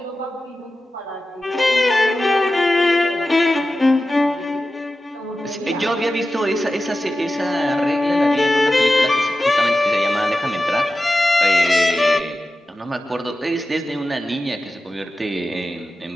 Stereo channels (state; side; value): normal; both; correlation 0.93